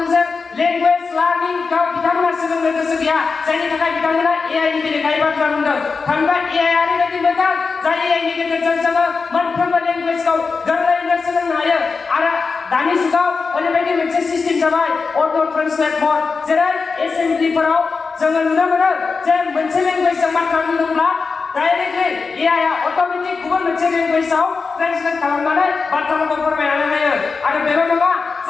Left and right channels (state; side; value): quieter; right; 4.7 dB